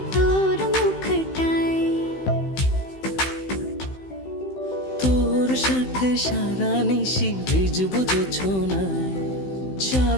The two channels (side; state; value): right; late; 16 ms